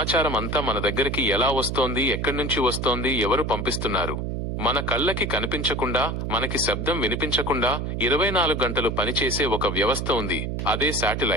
అంతా మన దగ్గరికి ఎలా వస్తోంది, ఎక్కడి నుంచి వస్తోంది, ఎవరు పంపిస్తున్నారు? మన కళ్ళకి కనిపించకుండా, మనకి శబ్దం వినిపించకుండా 24 గంటలు పనిచేసే ఒక వ్యవస్థ ఉంది, అదే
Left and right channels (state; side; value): noise; right; hum, 3 dB below the sound